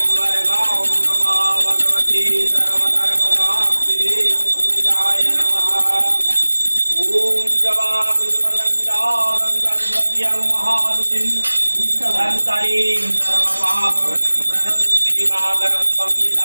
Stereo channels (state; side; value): inverted; both; correlation -1.00